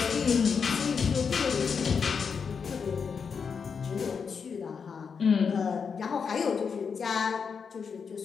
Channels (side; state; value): right; quieter; 6.1 dB